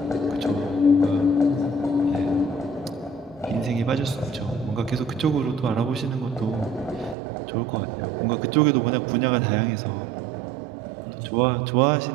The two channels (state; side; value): drops out; left; at 7.2 s